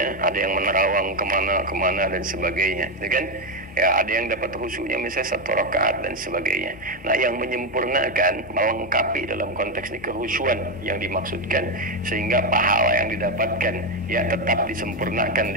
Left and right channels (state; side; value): normal; both; correlation 0.07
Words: ada yang menerawang kemana dan sebagainya, ya kan? Ya, ada yang dapat khusyuknya misalnya 1 rakaat dan sebagainya. Nah, yang menyempurnakan, melengkapi dalam konteks ini kekhusyuan yang dimaksudkan, sehingga pahala yang didapatkan ya tetap disempurnakan